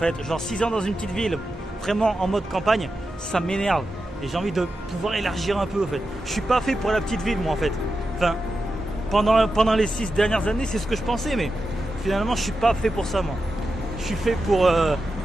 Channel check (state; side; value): normal; both; correlation 0.90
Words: Genre 6 ans dans une petite ville, vraiment en mode campagne, ça m'énerve. Et j'ai envie de pouvoir élargir un peu, en fait. Je suis pas fait pour la petite ville, moi, en fait. Enfin, pendant les 6 dernières années, c'est ce que je pensais, mais finalement, je suis pas fait pour ça, moi. Je suis fait pour